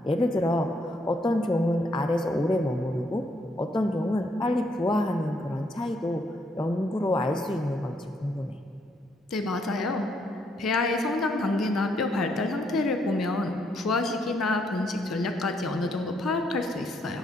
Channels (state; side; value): normal; both; correlation 0.73